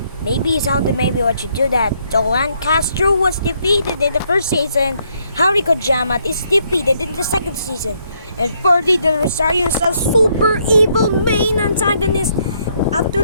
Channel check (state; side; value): inverted; both; correlation -0.72